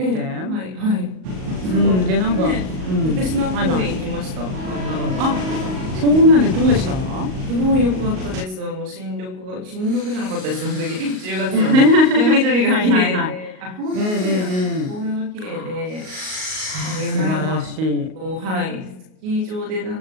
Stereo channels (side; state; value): left; late; 38 ms